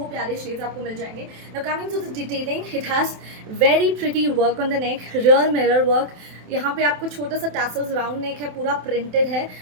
प्यारे शेड्स आपको मिल जाएंगे. Now coming to the detailing, it has very pretty work on the neck, real mirror work. यहाँ पे आपको छोटा सा टैसल्स, राउंड नेक है, पूरा प्रिंटेड है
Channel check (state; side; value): late; left; 27 ms